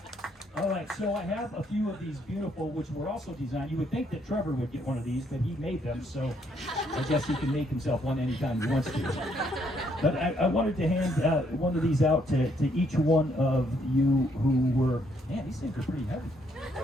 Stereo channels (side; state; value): both; normal; correlation 0.71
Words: All right, so I have a few of these beautiful, which were also designed. You would think that Trevor would get one of these, but he made them, so I guess he can make himself one anytime he wants to. But I wanted to hand one of these out to each one of you who were, man, these things are pretty heavy.